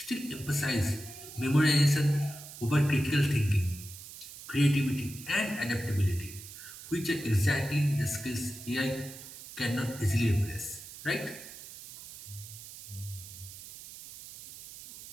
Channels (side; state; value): right; noise; hiss, 14 dB below the sound